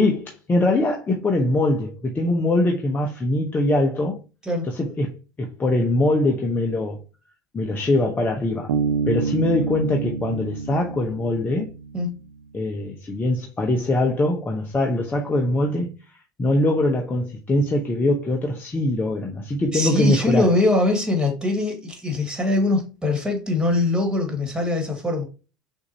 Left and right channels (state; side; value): normal; both; correlation 0.56